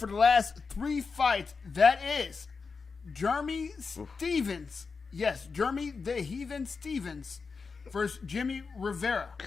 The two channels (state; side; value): quieter; right; 4.9 dB